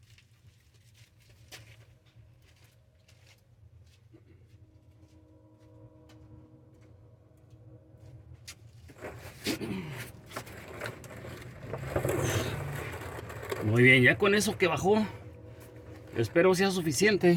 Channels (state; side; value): identical; both; correlation 1.00